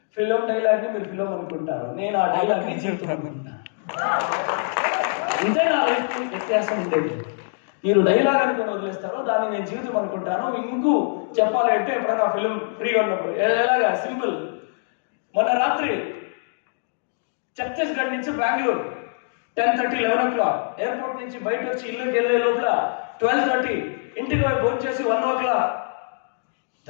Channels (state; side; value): silent; right; digital silence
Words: ఫిల్మ్ డైలాగ్ని మీరు ఫిల్మ్ అనుకుంటారు, నేను ఆ డైలాగ్ని జీవితం అనుకుంటాను. ఇంతే నా లైఫ్ వ్యత్యాసం ఉండేది. మీరు డైలాగ్ అనుకుని వదిలేస్తారో దాన్ని నేను జీవితం అనుకుంటాను. ఇంకూ చెప్పాలంటే ఎప్పుడైనా ఫిల్మ్ ఫ్రీగా ఉన్నప్పుడు ఎలాగా సింపుల్. మొన్న రాత్రి ఛత్తీస్గఢ్ నుంచి బెంగళూరు 10:30, 11 o'clock, ఎయిర్పోర్ట్ నుంచి బయట వచ్చి ఇల్లుకి వెళ్ళే లోపల 12:30, ఇంటికి పోయి భోజనం చేసి 1 o'clock